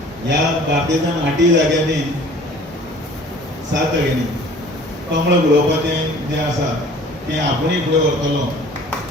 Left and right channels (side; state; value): both; normal; correlation 0.49